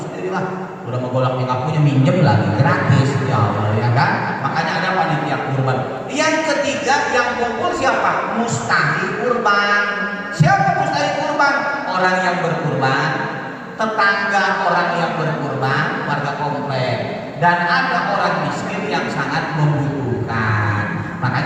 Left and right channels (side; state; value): both; identical; correlation 1.00